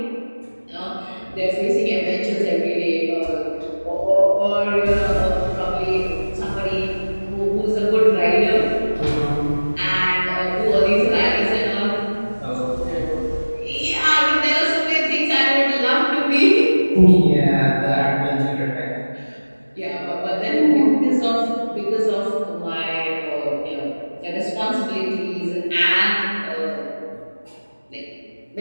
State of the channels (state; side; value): inverted; both; correlation -1.00